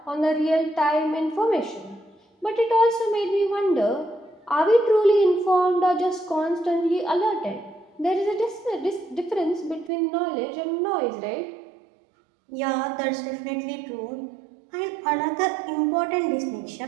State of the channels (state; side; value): drops out; left; at 9.9 s